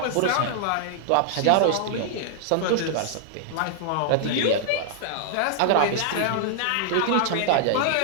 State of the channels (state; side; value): different; both; correlation -0.01